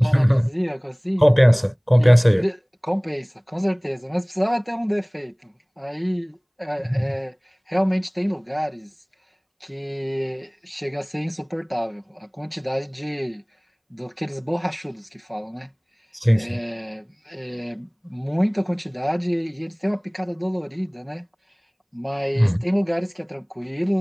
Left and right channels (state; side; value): identical; both; correlation 1.00